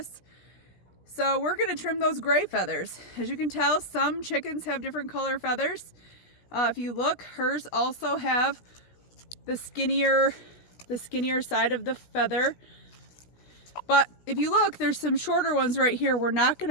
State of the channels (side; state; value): right; late; 17 ms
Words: So we're going to trim those gray feathers. As you can tell, some chickens have different color feathers. If you look, hers also have the skinnier side of the feather. But if you look, there's some shorter ones right here. We're not going